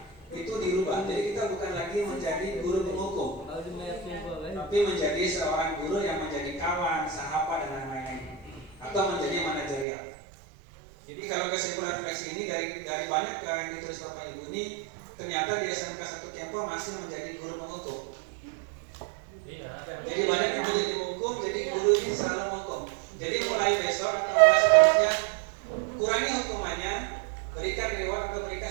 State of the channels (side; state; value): left; drops out; at 9.9 s